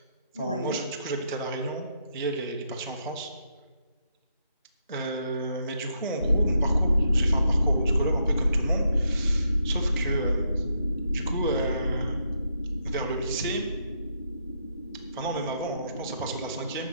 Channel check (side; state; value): both; inverted; correlation -0.78